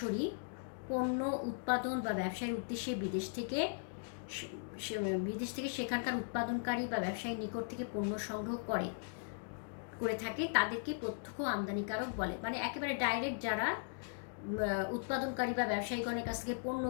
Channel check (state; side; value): silent; right; digital silence